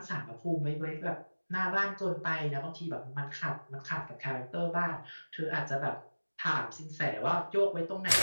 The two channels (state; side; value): inverted; both; correlation -1.00